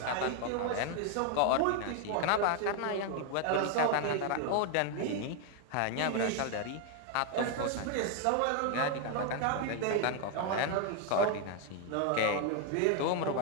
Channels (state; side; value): different; both; correlation 0.01